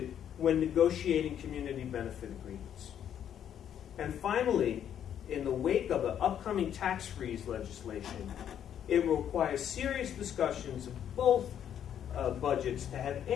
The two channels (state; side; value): quieter; right; 9.6 dB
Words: when negotiating community benefit agreements. And finally, in the wake of the upcoming tax freeze legislation, it will require serious discussions of both budgets to have